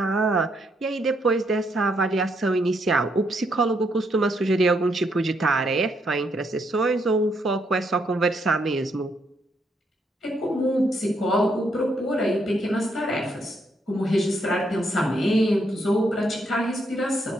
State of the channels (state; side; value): normal; both; correlation 0.76